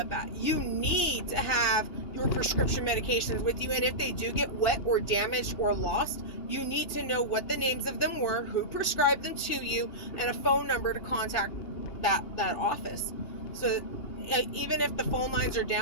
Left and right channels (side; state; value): right; late; 2.8 ms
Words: at. You need to have your prescription medications with you, and if they do get wet or damaged or lost, you need to know what the names of them were, who prescribed them to you, and a phone number to contact that office. So even if the phone lines are